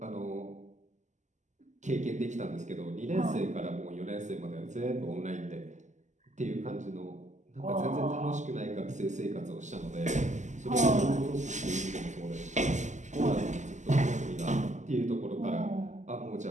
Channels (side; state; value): left; late; 0.34 ms